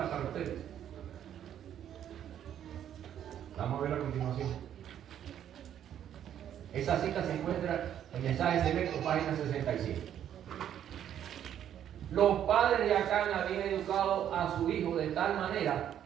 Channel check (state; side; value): quieter; left; 10.2 dB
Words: para ustedes. Vamos a ver a continuación. Esa cita se encuentra en Mensajes Selectos, página 67. Los padres de Acán habían educado a su hijo de tal manera